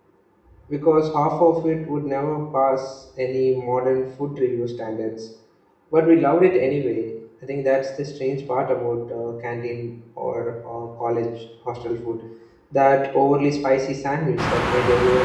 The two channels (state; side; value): identical; both; correlation 1.00